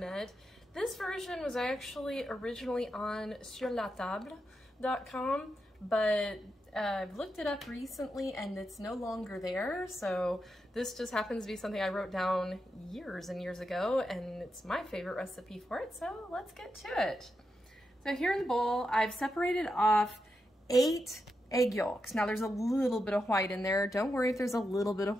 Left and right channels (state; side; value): normal; both; correlation 0.86